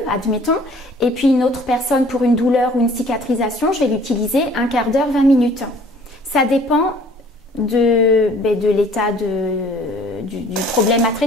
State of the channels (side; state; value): both; normal; correlation 0.54